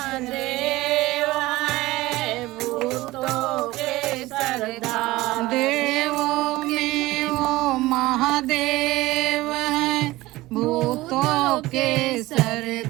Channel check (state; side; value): quieter; left; 18.8 dB